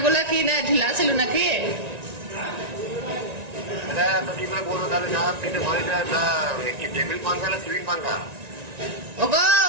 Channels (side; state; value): left; late; 1.9 ms